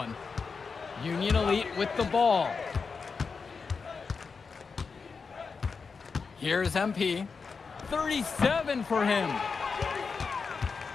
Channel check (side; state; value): right; quieter; 5.1 dB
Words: Union Elite with the ball. Here's MP. 37 for him.